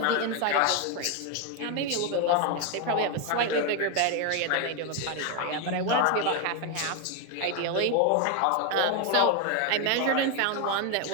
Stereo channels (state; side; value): different; both; correlation 0.01